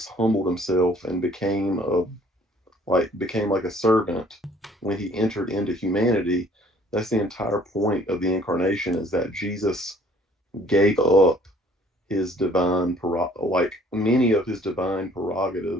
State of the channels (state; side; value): normal; both; correlation 0.57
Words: humbled himself and became like a servant when he entered into humanity. That's the entire point of the incarnation, is that Jesus gave up his divine many of his divine